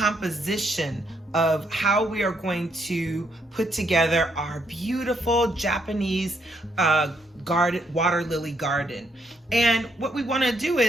of how we are going to put together our beautiful Japanese garden, water lily garden. And what we want to do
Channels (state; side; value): normal; both; correlation 0.74